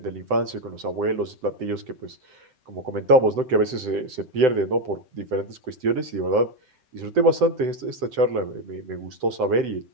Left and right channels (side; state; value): left; late; 7.8 ms